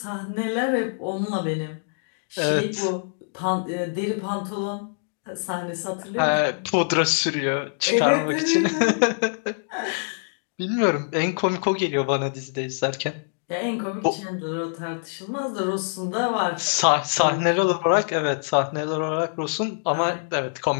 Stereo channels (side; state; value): right; silent; digital silence